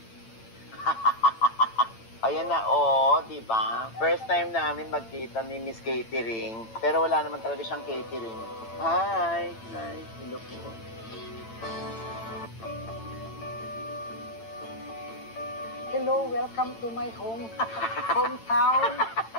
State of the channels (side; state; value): right; late; 8.9 ms